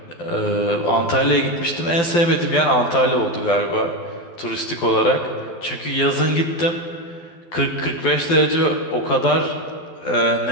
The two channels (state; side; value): late; right; 12 ms